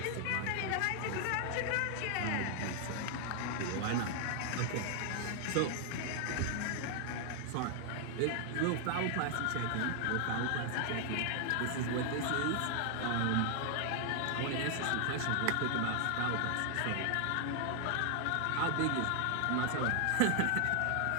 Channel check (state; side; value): different; both; correlation 0.00